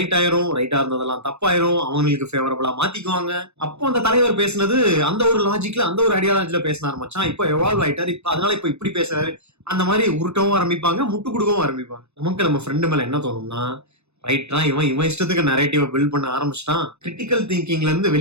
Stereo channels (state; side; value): late; left; 0.81 ms